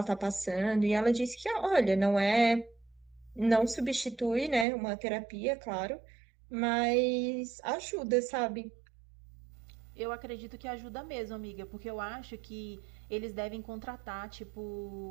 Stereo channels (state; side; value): drops out; left; at 4.7 s